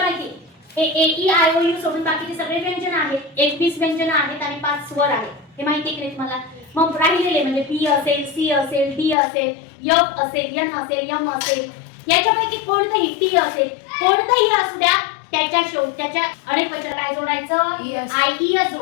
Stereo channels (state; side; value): drops out; right; at 9.2 s